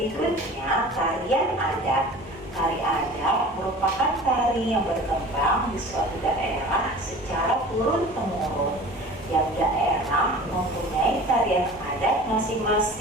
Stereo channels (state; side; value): normal; both; correlation 0.41